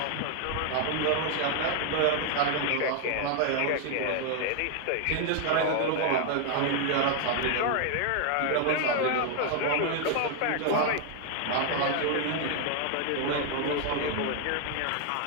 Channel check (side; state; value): both; different; correlation 0.00